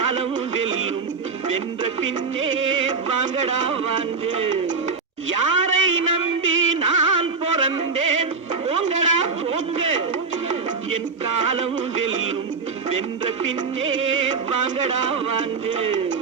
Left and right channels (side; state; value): left; quieter; 4.7 dB